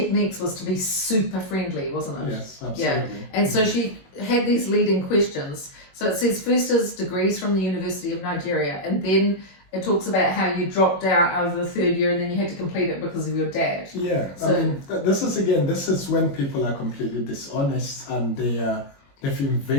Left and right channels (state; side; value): late; right; 21 ms